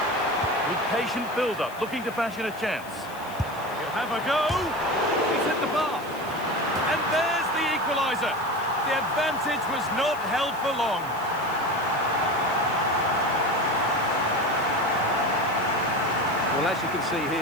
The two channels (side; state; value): left; noise; hiss, 20 dB below the sound